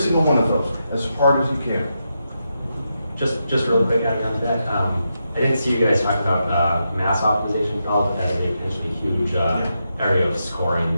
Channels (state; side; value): inverted; both; correlation -0.85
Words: one of those as hard as you can. Just real quick, adding on to that, I didn't see you guys talk about mass optimization. I'll look at a potentially huge area of